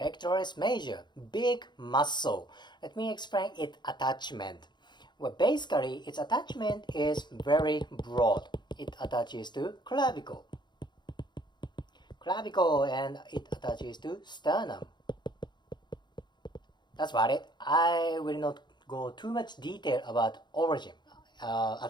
major, big muscle. Let me explain its attachment. Well, basically, its attachment is very broad. It attaches to clavicle, and it attaches to sternum. That's about it. I will not go too much detail about origin,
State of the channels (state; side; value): late; right; 0.21 ms